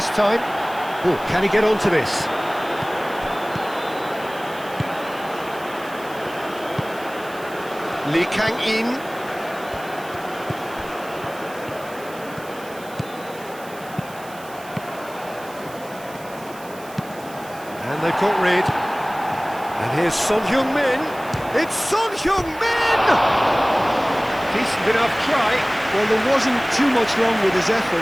time. Oh, can he get onto this? Lee Kang-in. And they've got rid. And here's Son Heung-min. It's Son Heung-min! Decent enough try. Well, there wasn't too much wrong with his effort.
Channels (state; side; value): noise; right; hiss, 20 dB below the sound